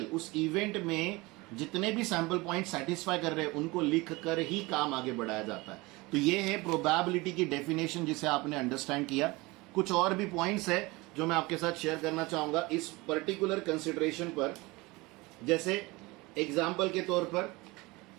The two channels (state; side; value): quieter; left; 23.1 dB